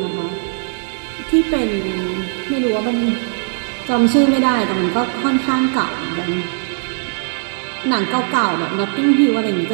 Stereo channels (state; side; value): silent; left; 67 dB below the other